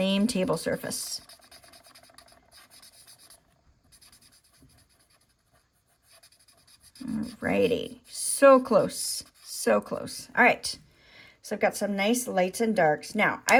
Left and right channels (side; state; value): both; identical; correlation 1.00